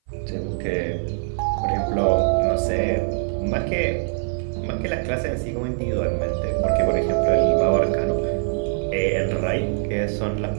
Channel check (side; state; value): left; silent; 57 dB below the other